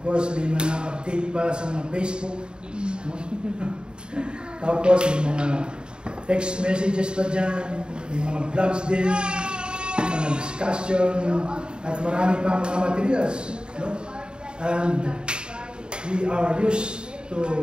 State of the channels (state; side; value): late; left; 0.050 ms